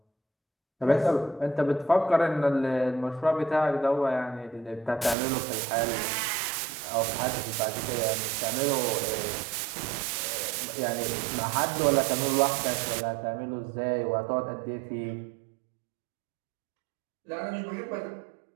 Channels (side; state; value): left; drops out; at 5.2 s